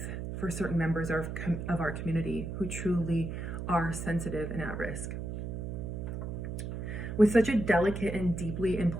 for certain members of our community who truly are sensitive and at risk. With such a delicate and deeply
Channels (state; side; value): noise; right; hum, 5 dB below the sound